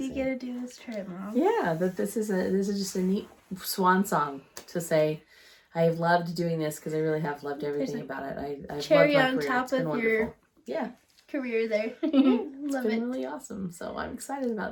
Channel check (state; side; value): identical; both; correlation 1.00